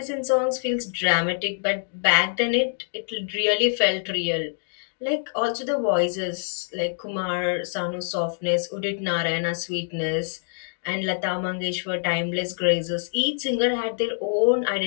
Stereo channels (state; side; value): silent; right; digital silence